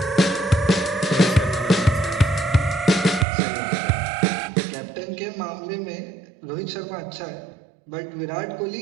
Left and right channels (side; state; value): left; drops out; at 3.2 s